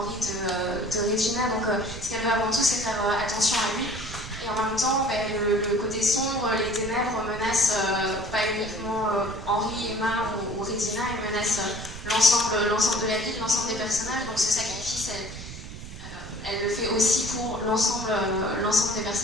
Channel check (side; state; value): right; noise; rumble, 11 dB below the sound